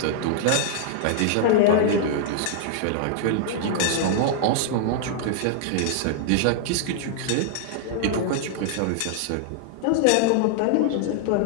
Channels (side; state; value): both; different; correlation -0.01